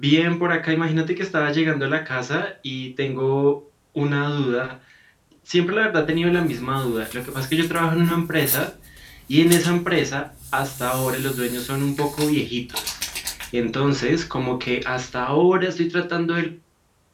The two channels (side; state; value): both; identical; correlation 1.00